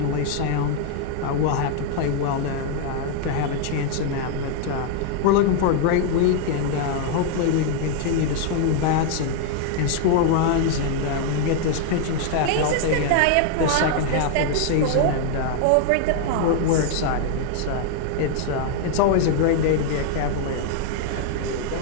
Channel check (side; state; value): both; different; correlation 0.00